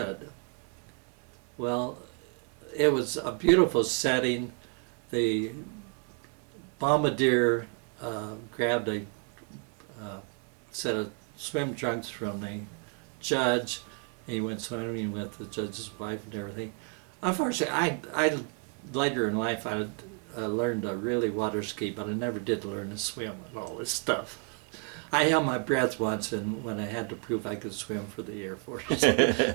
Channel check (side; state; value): left; quieter; 37.1 dB